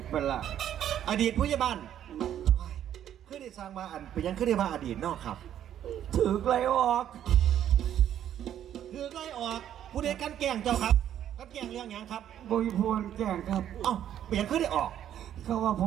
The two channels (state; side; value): quieter; left; 10.6 dB